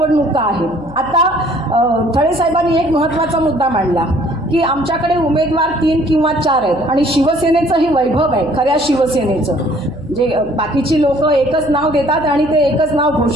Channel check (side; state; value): left; noise; hum, 20 dB below the sound